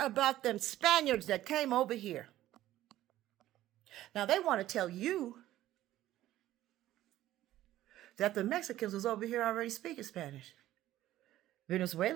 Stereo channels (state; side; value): quieter; left; 14.2 dB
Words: about them Spaniards that came over here. Now they want to tell you that the Mexicans was over here already speaking Spanish.